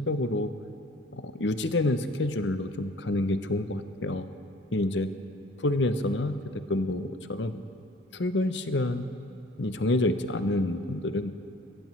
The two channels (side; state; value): both; normal; correlation 0.51